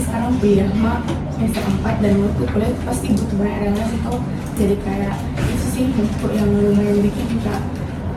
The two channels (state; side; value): identical; both; correlation 1.00